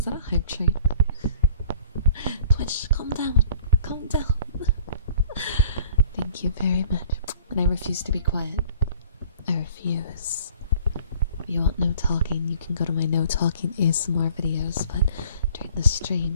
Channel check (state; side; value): inverted; both; correlation -0.51